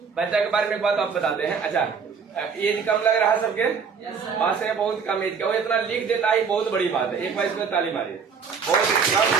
बच्चा के बारे में एक बात आप बताते हैं। अच्छा, एज कम लग रहा है सबके, बात से बहुत कम एज का, वो इतना लिख देता है, बहुत बड़ी बात है। एक बार इसमें ताली मारिए, बहुत कम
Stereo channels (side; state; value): left; quieter; 5.9 dB